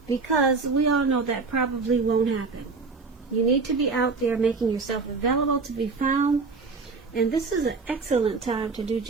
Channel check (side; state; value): left; quieter; 4.3 dB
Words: because we all know that probably won't happen. You need to be out there making yourself available to be found, and this is an excellent time to do